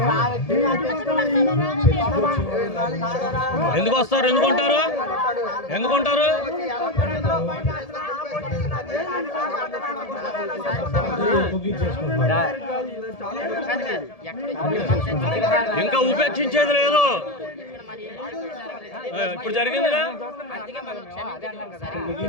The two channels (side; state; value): right; late; 1.7 ms